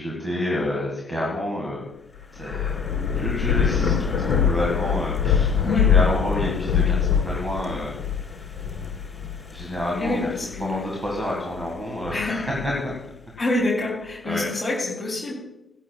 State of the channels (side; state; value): right; quieter; 4.3 dB